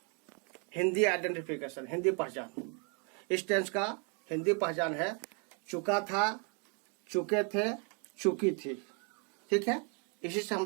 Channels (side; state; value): left; quieter; 37.1 dB